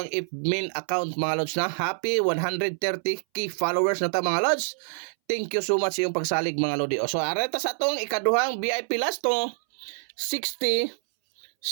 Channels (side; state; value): left; silent; 61 dB below the other